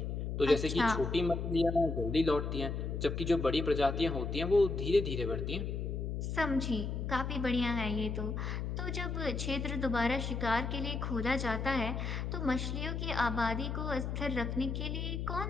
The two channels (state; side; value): noise; left; hum, 3 dB below the sound